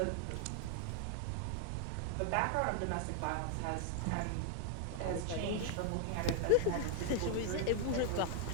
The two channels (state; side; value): different; both; correlation 0.00